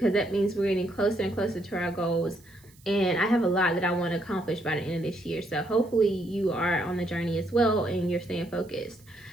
that means we're getting closer and closer to our goals. And I have a lot that I want to accomplish by the end of this year, so hopefully you are on the journey as well and you're staying focused.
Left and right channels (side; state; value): right; noise; hiss, 28 dB below the sound